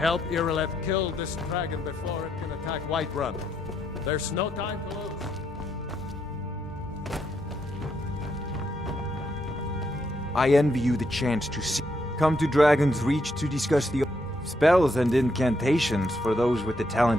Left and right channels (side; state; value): both; normal; correlation 0.77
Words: Irileth kill this dragon before it can attack Whiterun. There's no time to lose. I envy you the chance to see. Come to Dragon's Reach to discuss the spells and incantations for those with the